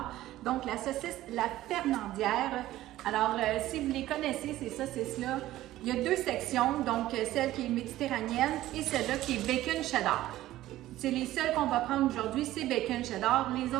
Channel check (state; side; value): quieter; left; 15.0 dB